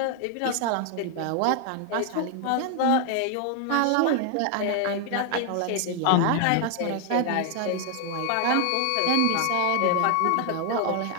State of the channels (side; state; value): both; different; correlation 0.00